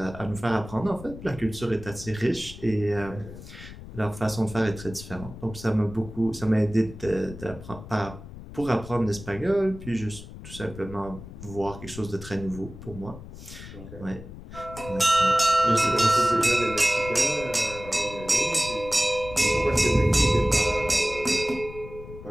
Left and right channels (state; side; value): noise; left; rumble, 14 dB below the sound